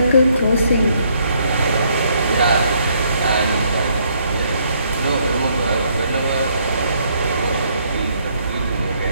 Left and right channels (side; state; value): both; inverted; correlation -0.70